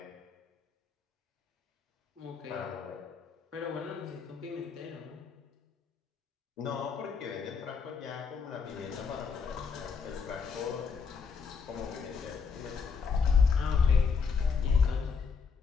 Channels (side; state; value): right; quieter; 5.6 dB